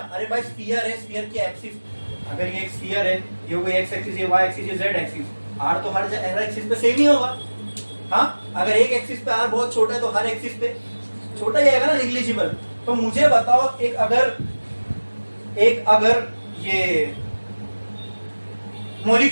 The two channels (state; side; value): inverted; both; correlation -1.00